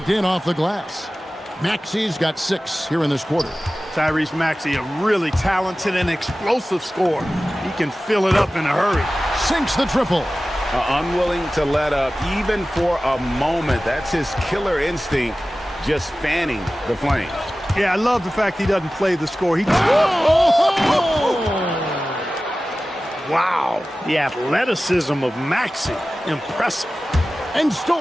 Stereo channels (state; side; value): normal; both; correlation 0.96